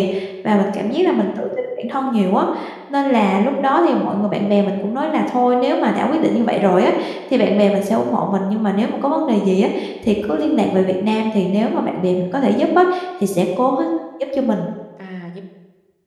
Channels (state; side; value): identical; both; correlation 1.00